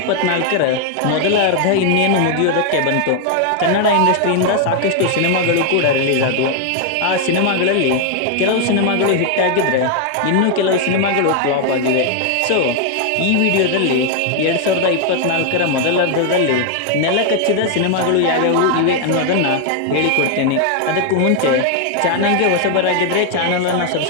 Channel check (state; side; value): different; both; correlation 0.00